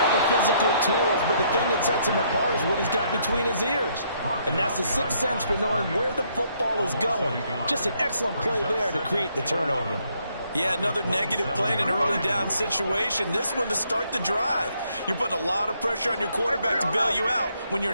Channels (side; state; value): both; inverted; correlation -0.71